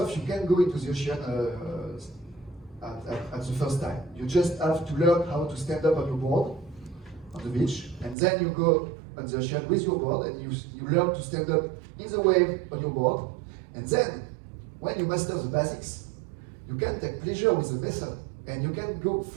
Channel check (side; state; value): left; drops out; at 8.2 s